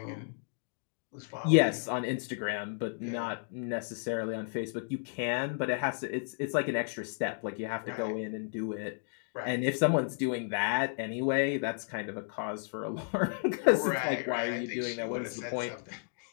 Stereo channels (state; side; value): silent; right; digital silence